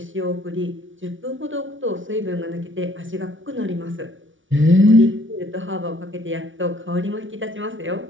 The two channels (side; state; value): left; late; 0.56 ms